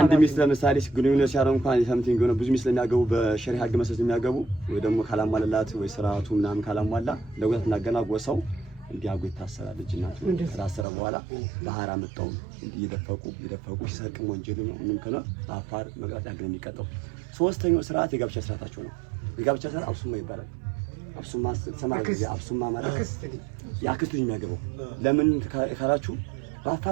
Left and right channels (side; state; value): left; drops out; at 10.9 s